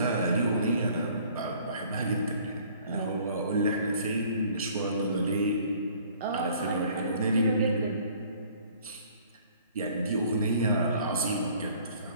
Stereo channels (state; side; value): inverted; both; correlation -0.56